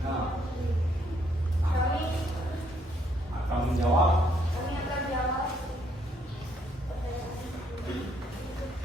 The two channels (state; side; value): normal; both; correlation 0.70